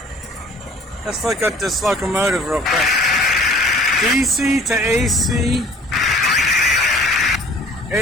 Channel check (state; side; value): normal; both; correlation 0.51